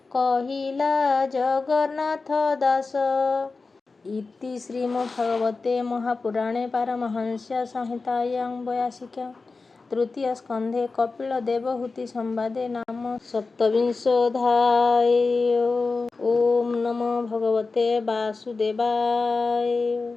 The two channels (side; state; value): right; quieter; 4.0 dB